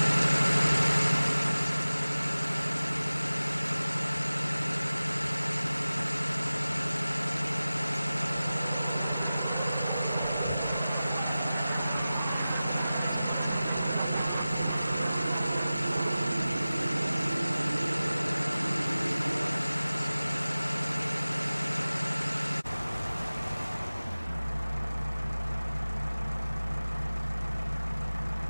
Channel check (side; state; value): both; inverted; correlation -0.97